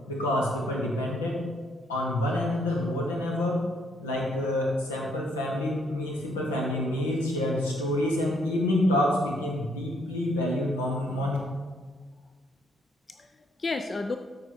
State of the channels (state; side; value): normal; both; correlation 0.69